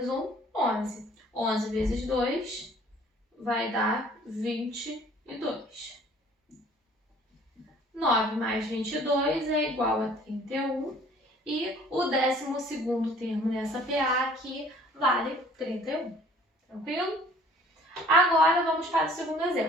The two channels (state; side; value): normal; both; correlation 0.54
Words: 1, 11. 11 vezes 2 vai dar 22. 9 mais 22 é igual a 31. E o 12º termo nessa PA aqui vale 31. Tranquilo? Agora vamos para o segundo